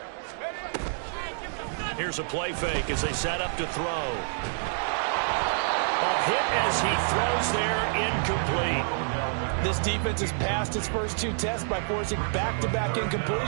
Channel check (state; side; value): silent; left; digital silence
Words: Here's a play fake as they set up to throw. A hit as he throws there, incomplete. This defense has passed its first 2 tests by forcing back-to-back